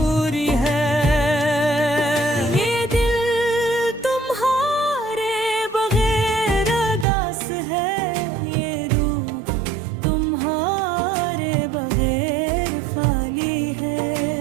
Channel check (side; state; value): left; drops out; at 7.1 s